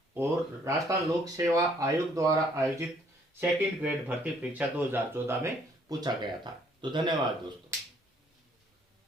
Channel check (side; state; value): both; normal; correlation 0.64